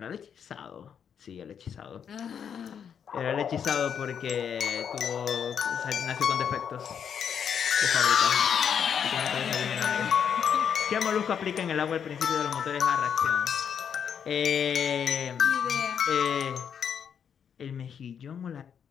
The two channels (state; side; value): quieter; right; 7.8 dB